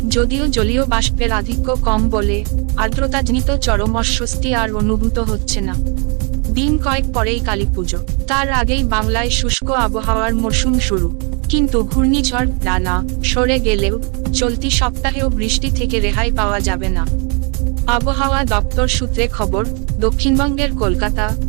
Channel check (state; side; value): quieter; left; 35.7 dB